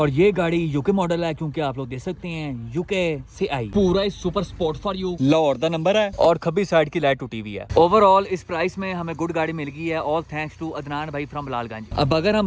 ये गाड़ी यूके मॉडल है, क्योंकि आप लोग देख सकते हैं यूके से आई। पूरा ही super sport for you Lahore दा नंबर है और खब्बी साइड की लाइट टूटी हुई है। ओवरऑल इस प्राइस में हमें गुड गाड़ी मिल गई है, ऑल थैंक्स टू अदनान भाई फ्रॉम बिलालगंज। अब अगर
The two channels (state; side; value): identical; both; correlation 1.00